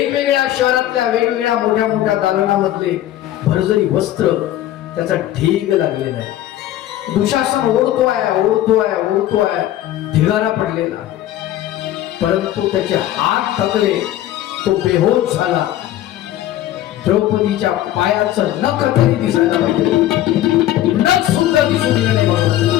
शहरातल्या वेगवेगळ्या मोठ्या मोठ्या दालनामधले भरजरी वस्त्र, त्याचा ढीग लागलेला आहे. दुशासन ओढतोय, ढिगारा पडलेला, परंतु त्याचे हात थकले, तो बेहोश झाला. द्रौपदीच्या पायाचं नख तरी दिसायला पाहिजे, नख सुद्धा दिसून गेलं नाही.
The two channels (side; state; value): right; quieter; 13.3 dB